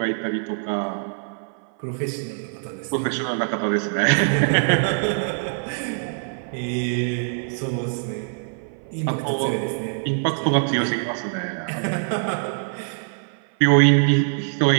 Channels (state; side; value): silent; left; 56 dB below the other